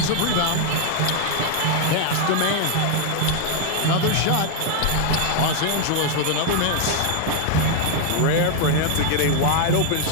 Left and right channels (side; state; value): both; different; correlation 0.00